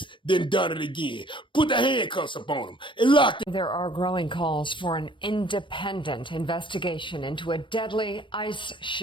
then done it again. Put the handcuffs up on him and locked him. There are growing calls for an independent investigation into a deadly ICE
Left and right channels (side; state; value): right; late; 0.24 ms